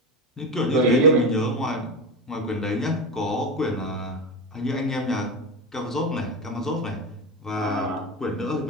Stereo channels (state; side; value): normal; both; correlation 0.19